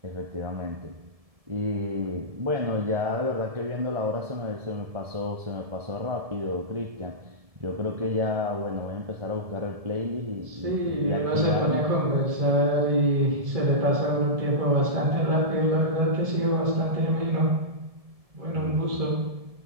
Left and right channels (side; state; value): left; late; 1.7 ms